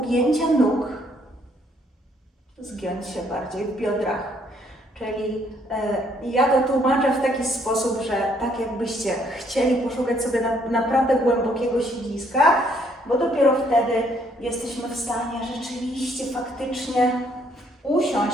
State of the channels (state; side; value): normal; both; correlation 0.67